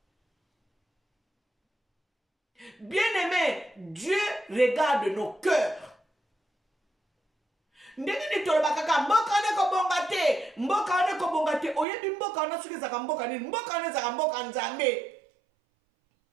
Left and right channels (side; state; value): left; drops out; at 11.9 s